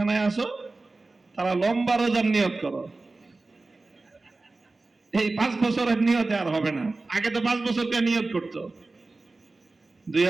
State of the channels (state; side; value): quieter; left; 3.4 dB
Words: আসো তারা লম্বা রোজার নিয়ত করো। এই 5 বছরের নিয়তে আর হবে না। আগে তো 5 বছরকে নিয়ত করতো,